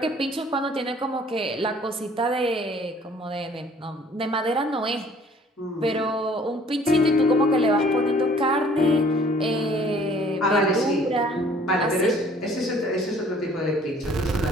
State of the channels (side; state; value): both; normal; correlation 0.56